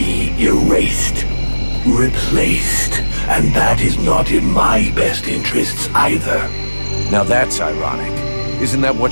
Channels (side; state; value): both; inverted; correlation -1.00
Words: erased, replaced, and that is not in my best interests either. Now that's ironic. Isn't that